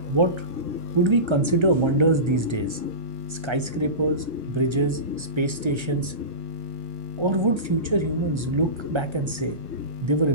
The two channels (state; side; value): late; left; 1.3 ms